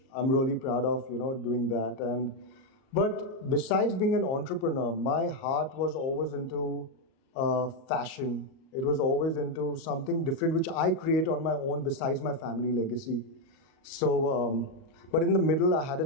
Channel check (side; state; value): right; late; 38 ms